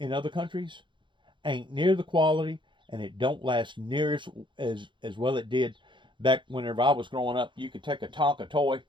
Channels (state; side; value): late; left; 0.23 ms